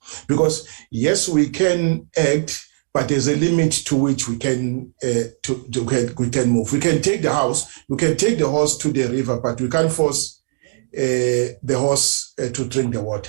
Because yes, we can act, but there's a limit to which we can we can move. We can take the house, we can take the horse to the river, but we can't force the horse to drink the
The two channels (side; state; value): left; silent; digital silence